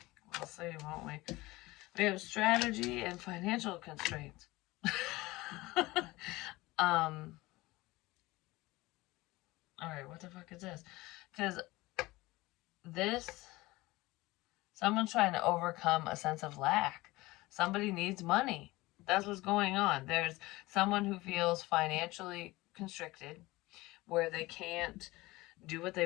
we'll see, won't we? We have strategy and financial constraints. Alright, what the fuck is this? Because someone's trying to overcome a sense of lack. Somebody needs money. That's what's going on. There's someone who feels financially constricted, where they can't do what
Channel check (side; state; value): right; quieter; 20.3 dB